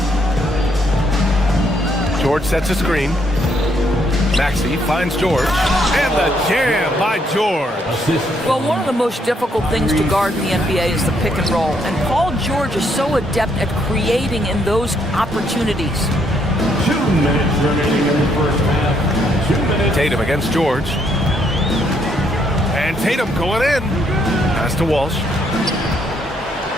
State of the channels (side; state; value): both; normal; correlation 0.72